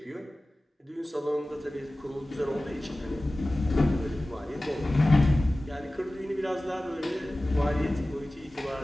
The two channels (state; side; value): normal; both; correlation 0.97